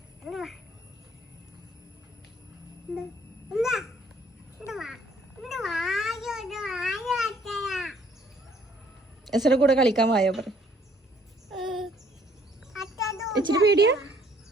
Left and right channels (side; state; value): both; normal; correlation 0.62